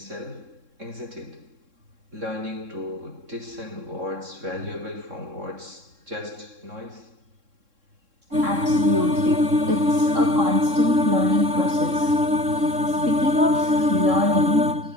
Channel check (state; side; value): late; left; 3.7 ms